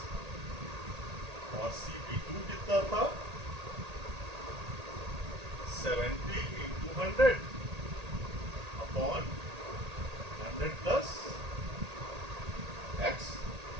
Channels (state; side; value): late; left; 1.8 ms